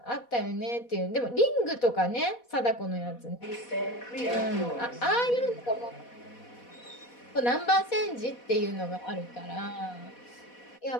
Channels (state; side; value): late; right; 4.1 ms